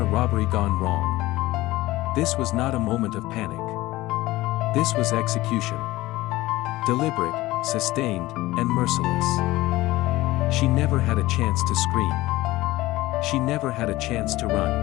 robbery gone wrong. This was not a moment of panic. This was execution. Deliberate, sustained, and merciless. She never had a chance to scream. She never had a chance to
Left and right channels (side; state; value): right; quieter; 18.2 dB